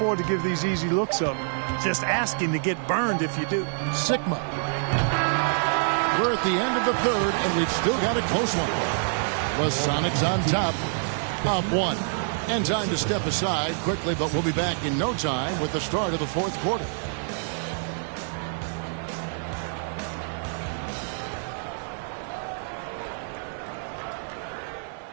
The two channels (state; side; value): silent; left; digital silence